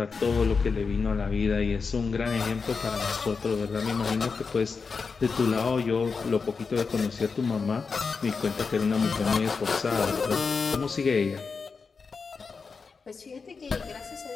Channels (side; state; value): right; quieter; 5.0 dB